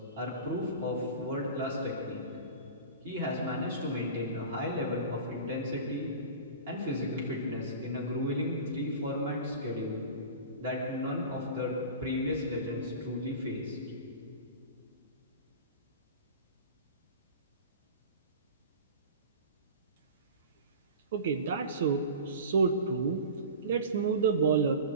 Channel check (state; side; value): inverted; both; correlation -0.34